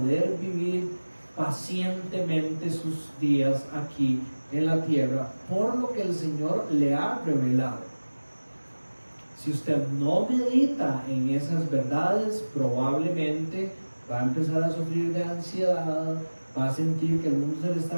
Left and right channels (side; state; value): both; inverted; correlation -1.00